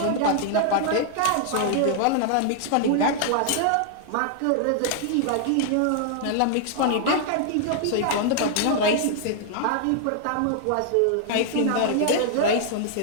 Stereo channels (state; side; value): different; both; correlation -0.01